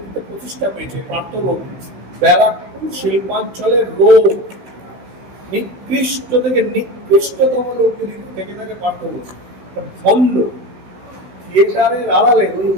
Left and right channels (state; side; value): late; left; 16 ms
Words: প্রতিষ্ঠা পেয়েছে। পার্থবর্তী ব্যারাকপুর শিল্পাঞ্চলের লোক, নিকৃষ্ট থেকে নিকৃষ্টতম লোক যদি থেকে থাকে পার্থবর্তী, ভণ্ড, থিয়েটারের আড়ালে ওই